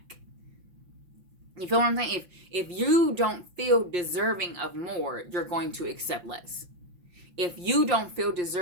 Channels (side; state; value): left; late; 5.6 ms